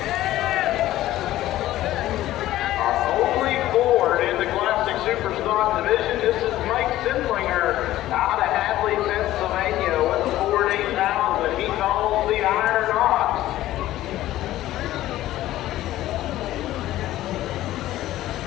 Our only Ford in the Classic Superstock division. This is Mike Sindlinger out of Hadley, Pennsylvania with a Ford 8000. He calls the Iron Ox.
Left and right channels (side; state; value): right; quieter; 14.7 dB